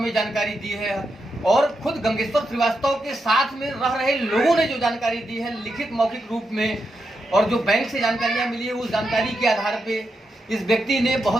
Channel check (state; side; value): normal; both; correlation 0.85